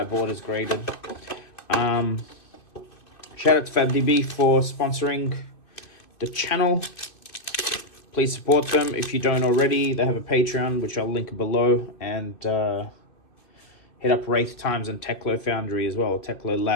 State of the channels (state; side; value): late; right; 2.6 ms